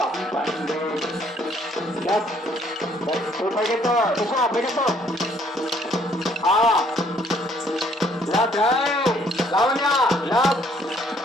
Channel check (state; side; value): normal; both; correlation 0.64